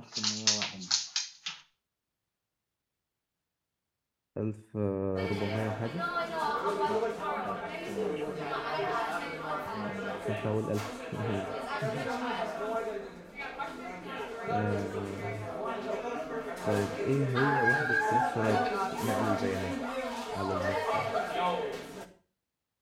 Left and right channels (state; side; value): identical; both; correlation 1.00